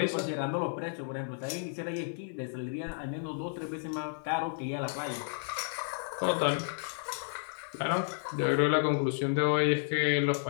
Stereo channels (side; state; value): right; silent; digital silence